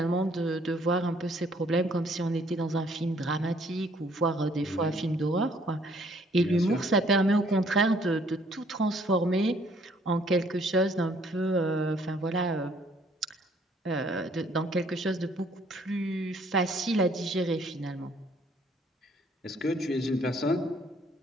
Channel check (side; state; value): both; normal; correlation 0.62